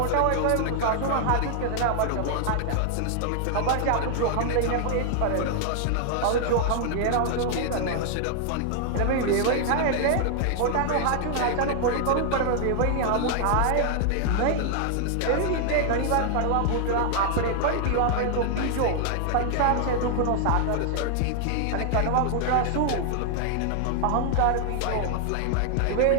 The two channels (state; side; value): different; both; correlation 0.00